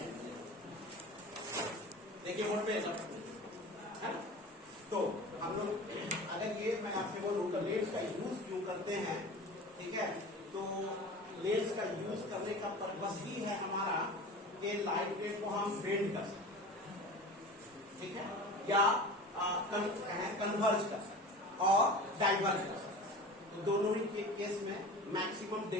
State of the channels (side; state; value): both; normal; correlation 0.36